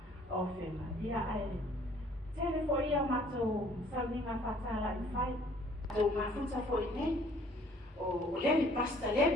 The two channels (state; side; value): normal; both; correlation 0.58